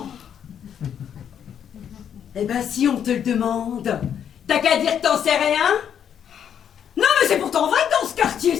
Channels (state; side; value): quieter; right; 8.7 dB